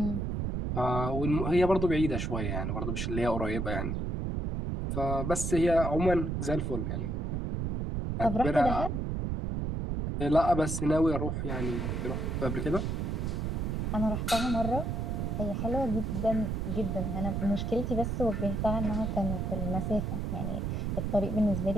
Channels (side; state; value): right; noise; rumble, 1 dB below the sound